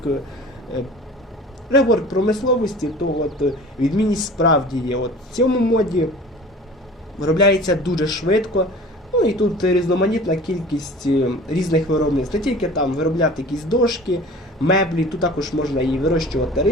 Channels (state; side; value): normal; both; correlation 0.42